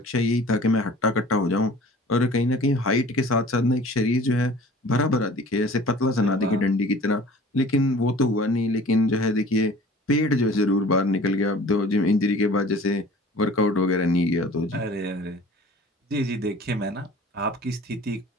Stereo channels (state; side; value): normal; both; correlation 0.46